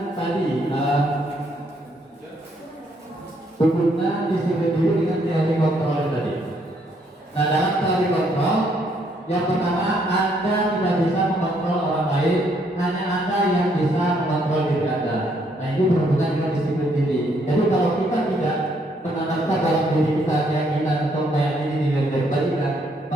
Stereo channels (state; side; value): normal; both; correlation 0.70